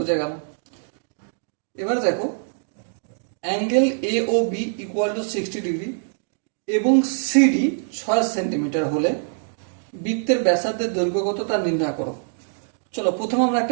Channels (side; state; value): left; silent; digital silence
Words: গেল। এবার দেখো, angle A O B equal to 60 degree এবং সিডি 6 সেন্টিমিটার হলে বৃত্তের ব্যাসার্ধের দৈর্ঘ্য কত তা নির্ণয় করো। চলো, প্রথমে আমরা